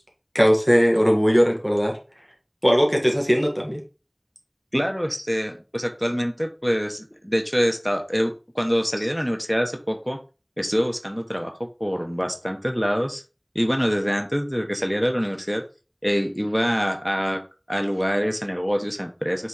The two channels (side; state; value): both; identical; correlation 1.00